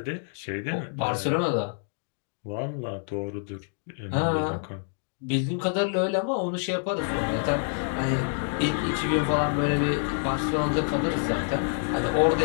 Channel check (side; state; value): right; silent; digital silence